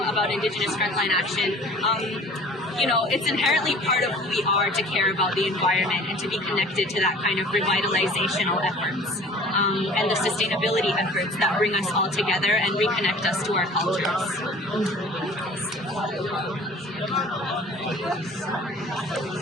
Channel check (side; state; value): both; normal; correlation 0.47